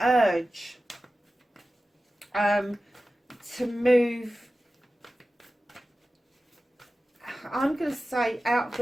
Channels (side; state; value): both; normal; correlation 0.95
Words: to move, I'm going to say, out of